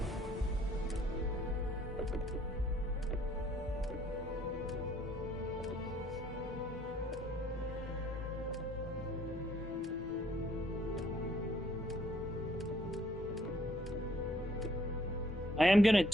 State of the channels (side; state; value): both; normal; correlation 0.64